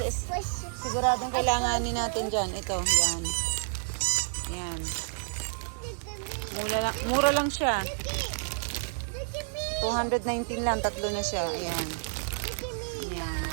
siguradong kailanganin natin dyan. Ito, yan. Yan. Mura lang siya. 219 lang. Tatlo na siya. Ayan. Ayan.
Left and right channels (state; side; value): silent; left; digital silence